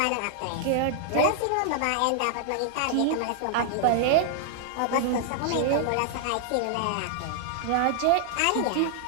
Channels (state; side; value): different; both; correlation -0.01